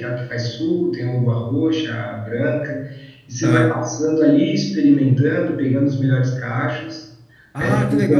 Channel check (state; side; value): identical; both; correlation 1.00